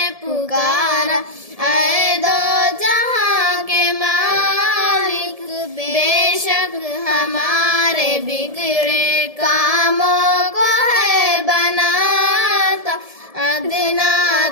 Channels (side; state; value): left; late; 1.7 ms